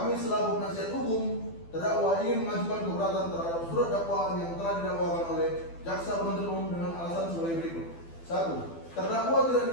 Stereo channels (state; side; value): late; right; 12 ms